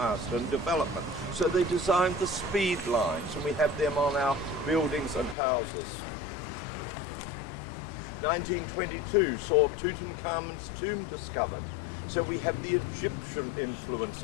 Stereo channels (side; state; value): right; drops out; at 5.4 s